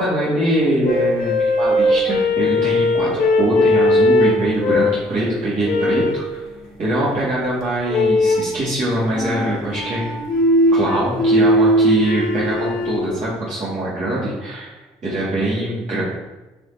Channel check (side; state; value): both; normal; correlation 0.53